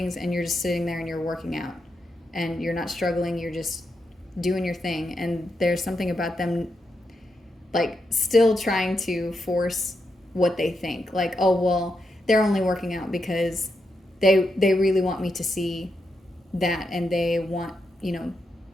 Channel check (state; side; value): normal; both; correlation 0.84